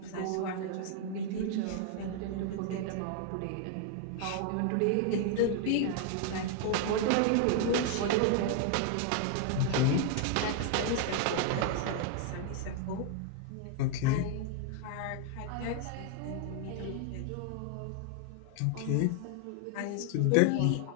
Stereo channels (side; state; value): both; different; correlation 0.00